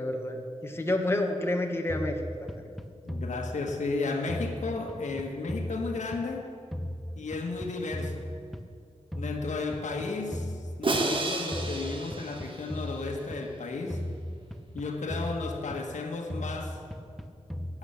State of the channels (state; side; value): normal; both; correlation 0.72